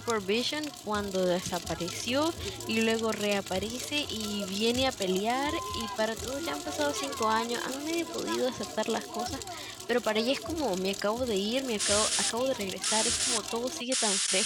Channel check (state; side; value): identical; both; correlation 1.00